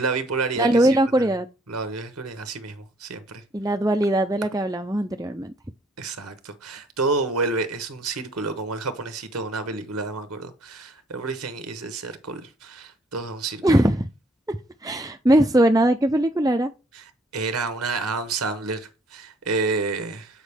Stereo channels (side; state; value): both; normal; correlation 0.64